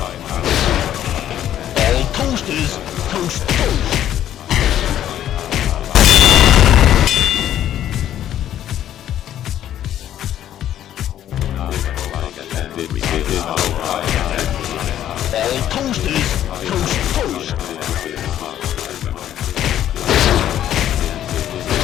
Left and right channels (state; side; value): quieter; right; 11.4 dB